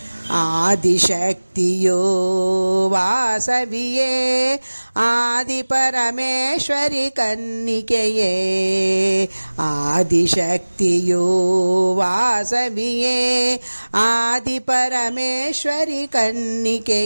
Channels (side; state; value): both; inverted; correlation -1.00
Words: ಆದಿಶಕ್ತಿಯೋ ವಾಸವಿಯೇ, ಆದಿ ಪರಮೇಶ್ವರಿ ಕನ್ನಿಕೆಯೇ. ಆದಿಶಕ್ತಿಯೋ ವಾಸವಿಯೇ, ಆದಿ ಪರಮೇಶ್ವರಿ